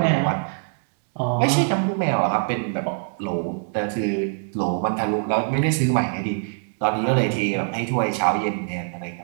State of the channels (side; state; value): left; silent; 63 dB below the other